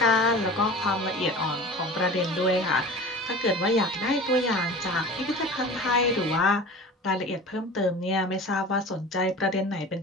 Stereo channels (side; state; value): both; normal; correlation 0.37